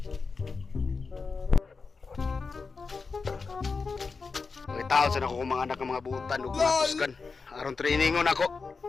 Taon sa ako mga anak ng mga butan ug matuskan aron trainingon ako.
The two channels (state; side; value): quieter; right; 4.6 dB